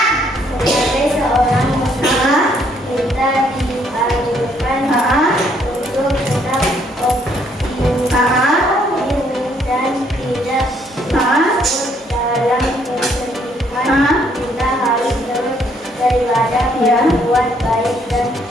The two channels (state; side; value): normal; both; correlation 0.68